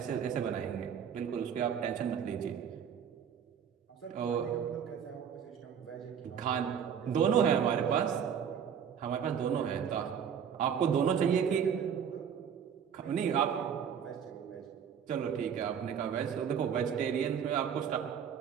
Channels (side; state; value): left; quieter; 7.9 dB